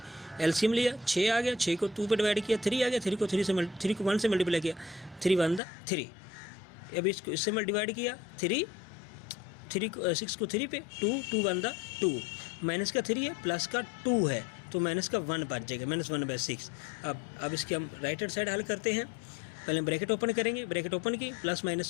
एलसीएम लिया 6 आ गया, 6 को 2 पे डिवाइड किया 3 आ गया, 3 को 1 से मल्टीप्लाई किया 3 1 3। अब इसको इससे डिवाइड किया 3 को 6 को 3 पे 2 1 2, माइनस का 3 है प्लस का 2 है, तो माइनस का 1 बच जाएगा, -1/6। अब इसकी हम राइट हैंड साइड हल करते हैं। पहले ब्रैकेट ओपन करेंगे, ब्रैकेट ओपन की प्लस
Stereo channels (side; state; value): right; drops out; at 5.6 s